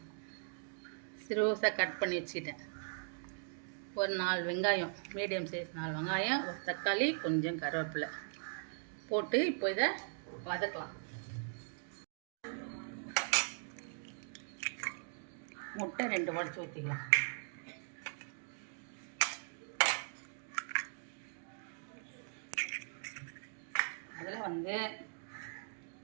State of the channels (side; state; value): left; silent; digital silence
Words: சிறுசாக கட் பண்ணி வச்சுக்கிட்டேன். ஒரு 4 வெங்காயம், மீடியம் சைஸ் 4 வெங்காயம், ஒரு தக்காளி, கொஞ்சம் கருவேப்பிலை போட்டு இப்போ இதை வதக்கலாம். முட்டை 2 உடைச்சி ஊற்றிக்கலாம். அதில் வந்து